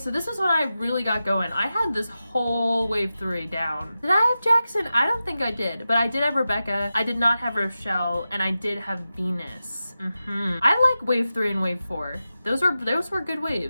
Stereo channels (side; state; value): both; inverted; correlation -0.93